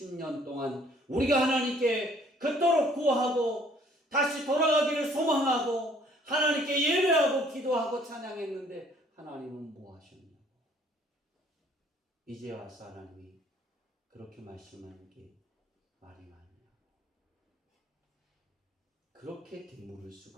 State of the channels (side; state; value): both; normal; correlation 0.59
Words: 동안 우리가 하나님께 그토록 구하고 다시 돌아가기를 소망하고 하나님께 예배하고 기도하고 찬양했는데 하나님은 뭐 하셨냐고. 이제 와서 하나님이 그렇게 말씀하는 게 말이 많냐고. 그렇게 되물을